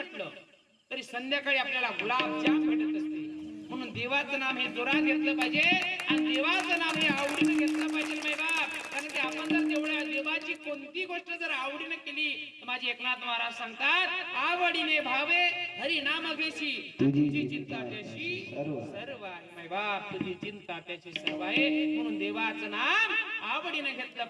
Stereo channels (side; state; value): both; identical; correlation 1.00